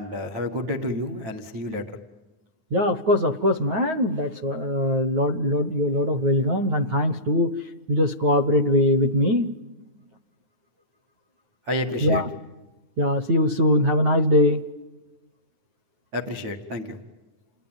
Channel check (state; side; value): late; left; 9.4 ms